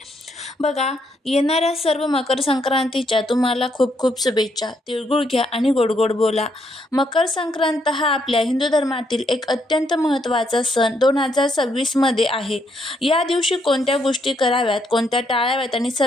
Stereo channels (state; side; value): normal; both; correlation 0.75